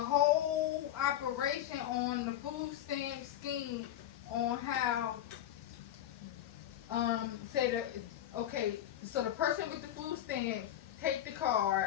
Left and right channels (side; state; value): right; quieter; 11.9 dB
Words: operation on the food stamp scheme, on how so the person with the food stamp take the